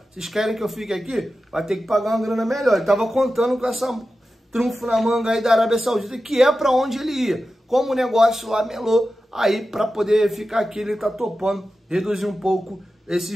Vocês querem que eu fique aqui? Vai ter que pagar uma grana melhor. Ele estava contando com essa trunfo na manga aí da Arábia Saudita, que é para onde ele ia. Como o negócio lá melou, aí para poder ficar aqui ele está topando reduzir um pouco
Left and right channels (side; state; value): both; normal; correlation 0.93